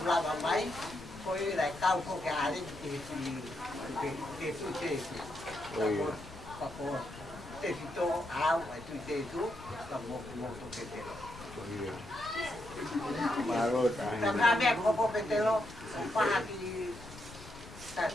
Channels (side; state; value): left; noise; rumble, 16 dB below the sound